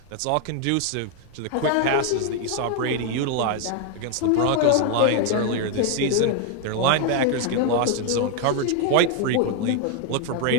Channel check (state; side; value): different; both; correlation 0.01